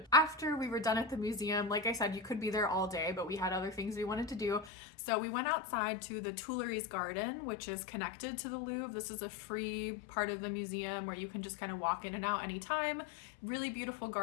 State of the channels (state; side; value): drops out; right; at 4.7 s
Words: After we were done at the museum, like I said, you could be there all day, but we had other things we wanted to do. So we went outside to the Tuileries Garden, which is connected to the Louvre. This is a free part of the museum where you can just kind of walk in and out anytime. Really beautiful